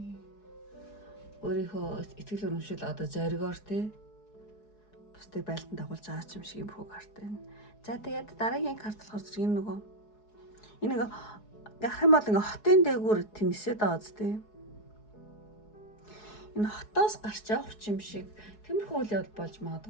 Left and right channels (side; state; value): right; late; 4.7 ms